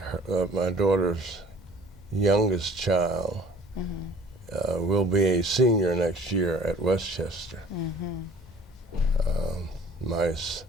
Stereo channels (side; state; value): both; normal; correlation 0.50